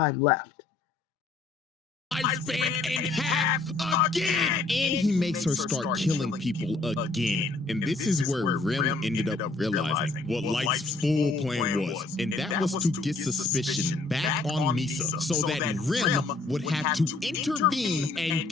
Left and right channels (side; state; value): right; quieter; 3.5 dB